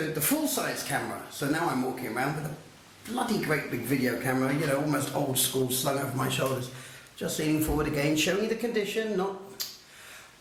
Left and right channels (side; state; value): both; identical; correlation 1.00